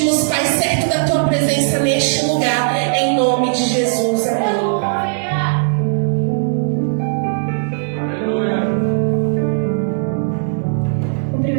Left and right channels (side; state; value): left; silent; digital silence